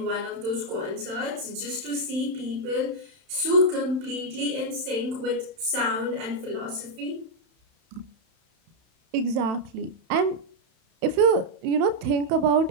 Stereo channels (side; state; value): left; late; 31 ms